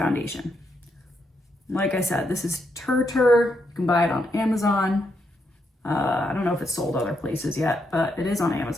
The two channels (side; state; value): both; normal; correlation 0.80